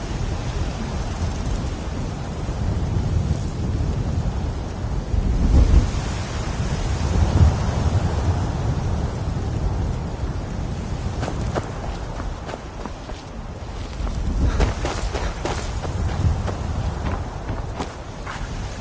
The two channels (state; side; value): identical; both; correlation 1.00